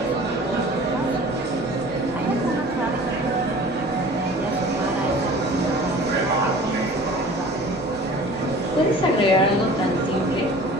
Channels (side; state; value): both; normal; correlation 0.44